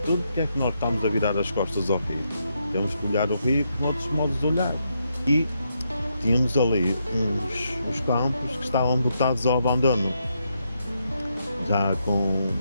porque é que nós estamos a virar as costas ao rio? Temos que olhar o rio com outros modos de olhar. E tínhamos ali uns campos que estavam botados ao abandono, já com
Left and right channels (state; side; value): inverted; both; correlation -0.80